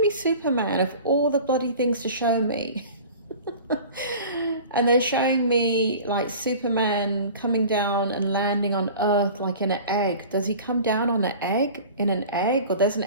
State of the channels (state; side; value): inverted; both; correlation -0.41